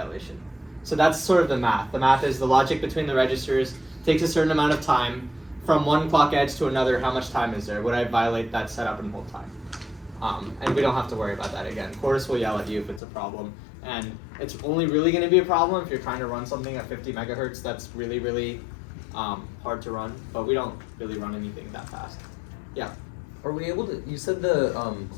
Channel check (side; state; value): right; drops out; at 13.0 s